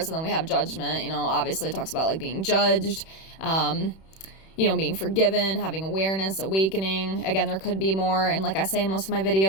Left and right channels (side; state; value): right; late; 31 ms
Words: And then we have judgment, you know, obviously it talks about like being judged, you know, being forgiven, having awareness, awakening. Again, there could be more. And like I say in most of my